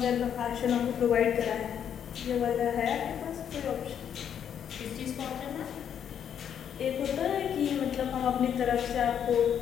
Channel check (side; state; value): right; quieter; 8.7 dB